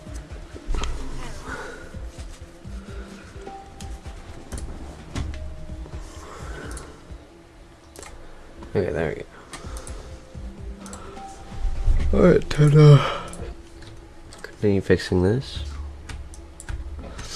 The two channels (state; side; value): identical; both; correlation 1.00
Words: Okay, there we go. Alright, ta-da. Continue fixing this.